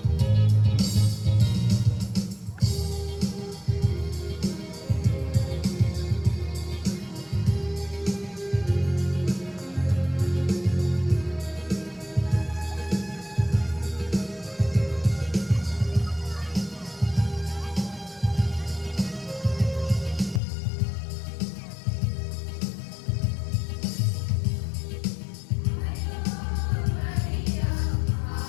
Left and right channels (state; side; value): drops out; right; at 20.4 s